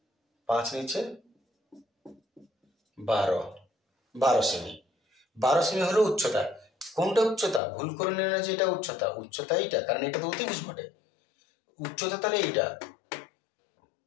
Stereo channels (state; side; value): drops out; right; at 7.6 s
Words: 5 নিচে 12 সেমি। 12 সেমি হলো উচ্চতা। কোনটা উচ্চতা? ভুল করে নিল না যে এটা উচ্চতা, উচ্চতা এইটা, কারণ এটা তো অতিভুজ বটে। উচ্চতা তাহলে এইটা।